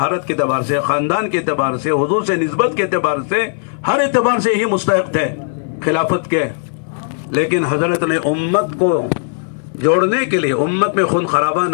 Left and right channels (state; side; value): silent; right; digital silence